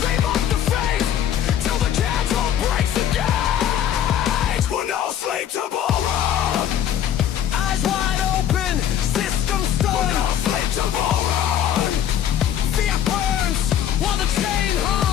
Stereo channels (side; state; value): right; quieter; 10.0 dB